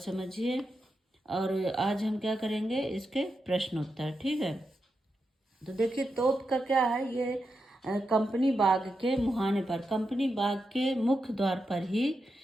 और आज हम क्या करेंगे, इसके प्रश्न उत्तर, ठीक है। तो देखिए तोप का क्या है, ये कंपनी बाग के मुहाने पर, कंपनी बाग के मुख्य द्वार पर ही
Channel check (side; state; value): both; normal; correlation 0.87